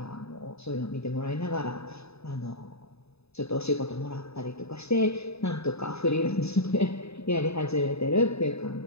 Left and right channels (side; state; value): right; late; 0.79 ms